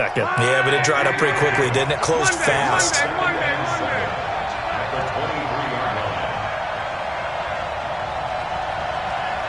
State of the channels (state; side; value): identical; both; correlation 1.00